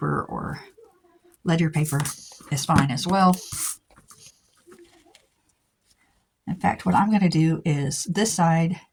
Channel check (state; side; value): identical; both; correlation 1.00